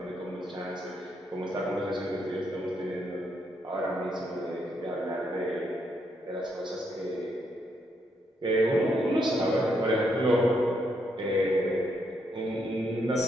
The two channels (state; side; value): normal; both; correlation 0.76